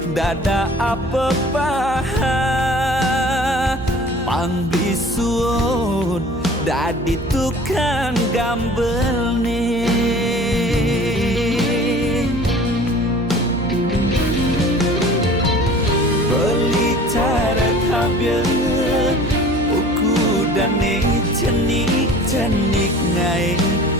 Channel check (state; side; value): noise; right; hum, 12 dB below the sound